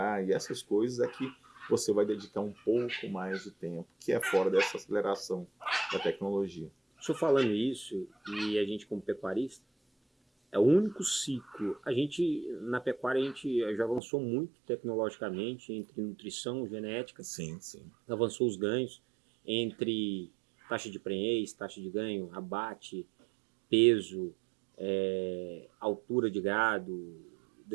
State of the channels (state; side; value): drops out; left; at 14.0 s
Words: e essas coisas é que você vai dedicar um pouco mais de tempo, que é fora dessa aceleração da tecnologia. Estou falando isso, e a gente como pecuarista, é o único ciclo. A gente, na pecuária, a gente já avançou muito tecnologicamente, entre nutrição, genética. Sim, sim. Avançou os ganhos, entre taxa de prenhez, taxa de ganho, abate, peso, altura de gado,